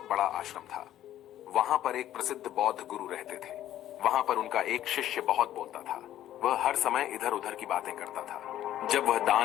बड़ा आश्रम था। वहां पर एक प्रसिद्ध बौद्ध गुरु रहते थे। वहां पर उनका एक शिष्य बहुत बोलता था। वह हर समय इधर उधर की बातें करता था। जब वह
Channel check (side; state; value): right; quieter; 12.4 dB